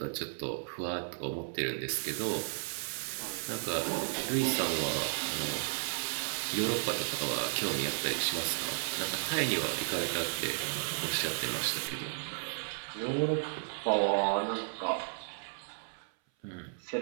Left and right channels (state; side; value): silent; left; 55 dB below the other